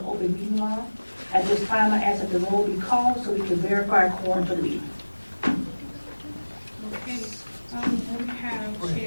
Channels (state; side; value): inverted; both; correlation -1.00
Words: open meeting law. At this time, I ask that the roll be called so we can verify quorum for the meeting. Okay, we have